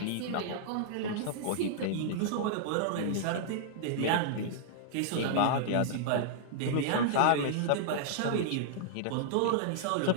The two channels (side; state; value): both; different; correlation -0.01